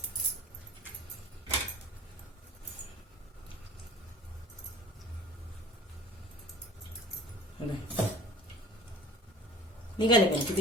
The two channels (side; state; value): both; normal; correlation 0.44